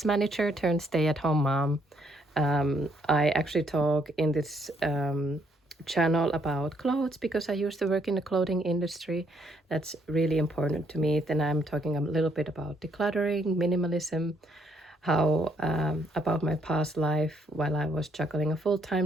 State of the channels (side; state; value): both; normal; correlation 0.70